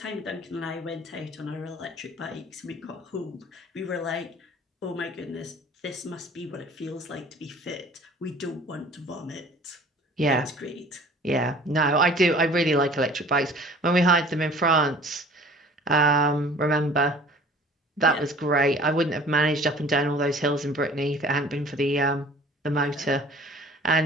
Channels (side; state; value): both; normal; correlation 0.49